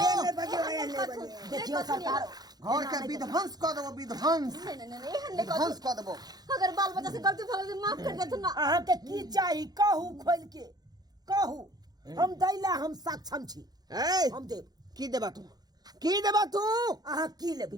देखियो सरकार घर के विध्वंस कर देबो नहीं विध्वंस कर देबो अगर बाल बच्चा से गलती भगल से माफ कर दे तू ना अहाँ के की चाही कहू खोल के कहू हम दैला हम सक्षम छी हम देब की देबा तू अहाँ की लेबै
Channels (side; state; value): left; late; 0.19 ms